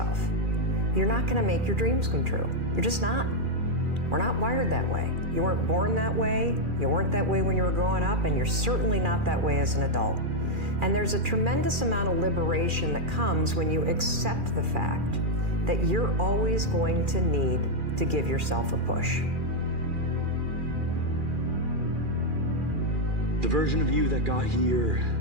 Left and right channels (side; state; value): left; late; 2.4 ms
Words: you're not going to make your dreams come true. You're just not. We're not wired that way. You weren't born that way. You weren't that way when you were growing up, and you're certainly not that way as an adult. And there's a tremendous amount of liberation that comes when you accept the fact that you're always going to need to give yourself a push. The version of you that got here